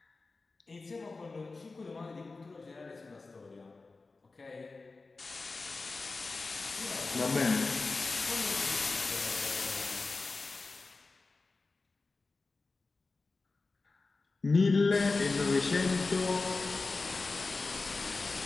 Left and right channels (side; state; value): right; quieter; 3.7 dB